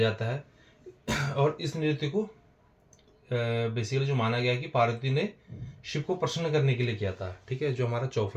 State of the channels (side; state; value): both; identical; correlation 1.00